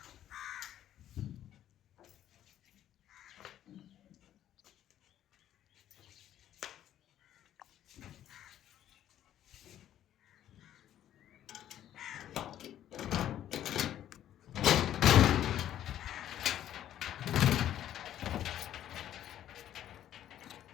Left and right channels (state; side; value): quieter; right; 11.5 dB